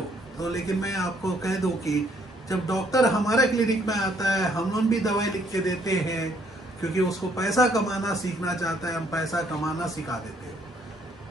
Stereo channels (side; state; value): both; normal; correlation 0.67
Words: तो। लेकिन मैं आपको कह दूं कि जब डॉक्टर हमारे क्लिनिक में आता है, हम लोग भी दवाई लिख के देते हैं, क्योंकि उसको पैसा कमाना सीखना चाहता है, हम पैसा कमाना सिखा देते हैं।